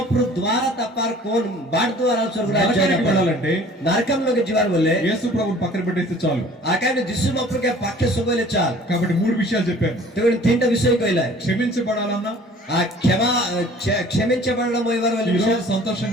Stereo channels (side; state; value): both; normal; correlation 0.50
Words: ద్వారా తప్పారు కోన్ బాడ్ ద్వారా స్వర్గరాజ్యానికి వెళ్ళాలంటే నరకంలోకి జీవాలు వల్లే యేసు ప్రభుని పక్కన పెట్టేస్తే చాలు. ఆ కైబిల్ దిస్సు మప్రుకే పక్కే సుబోలే చాలు. కాబట్టి 3 విషయాలు చెప్పాను. తెగుని తింట విషయం కోయిలా క్షమించబడాలన్నా, ఆ క్షమించబడడం ఈరోజు